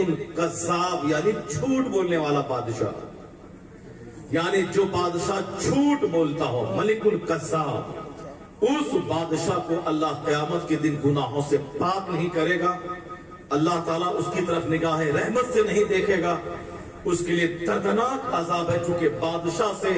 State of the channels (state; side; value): identical; both; correlation 1.00